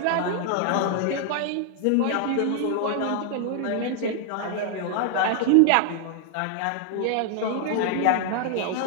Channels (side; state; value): both; different; correlation 0.00